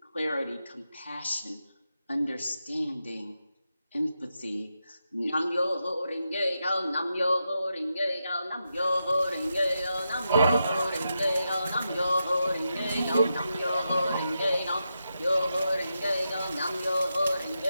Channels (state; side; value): inverted; both; correlation -0.86